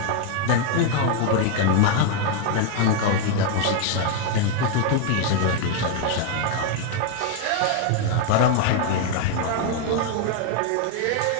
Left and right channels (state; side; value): different; both; correlation 0.01